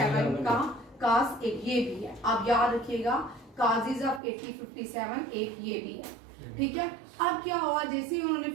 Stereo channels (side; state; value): left; drops out; at 4.2 s